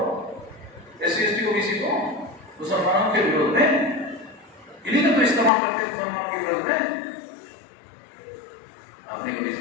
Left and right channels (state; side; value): drops out; right; at 5.5 s